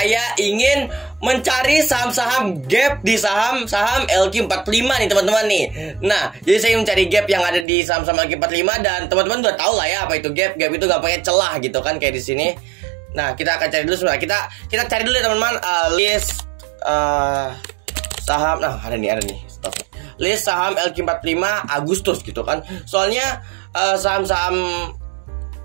ingin mencari saham-saham gap di saham-saham LQ45 nih teman-teman nih. Nah, jadi saya mencari gap yang ada di saham-saham LQ45 dan teman-teman udah tahu lah ya apa itu gap. Gap itu gampangnya celah gitu kan kayak di sini. Nah, kita akan cari dulu sebentar. Kita cari dulu ya teman-teman list saham. Nah, ada nih. Stop. List saham LQ45 Agustus gitu kan. Soalnya saham-saham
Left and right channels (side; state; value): left; drops out; at 7.7 s